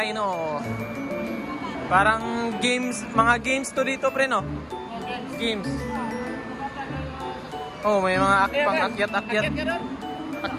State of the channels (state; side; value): identical; both; correlation 1.00